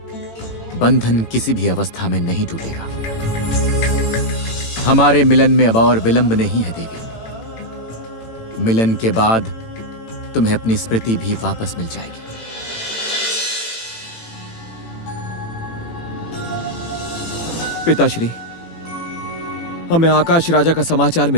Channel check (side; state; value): right; late; 18 ms